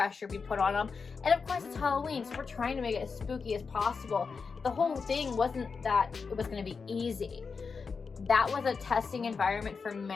be put on them, and of course it's Halloween, so we're trying to make it as spooky as possible. The whole thing wasn't that it was going to be easy. That was a testing environment for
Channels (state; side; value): quieter; right; 5.1 dB